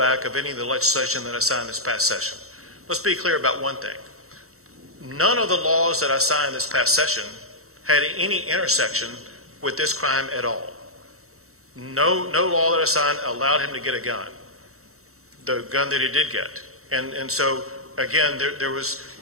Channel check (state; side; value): late; left; 0.64 ms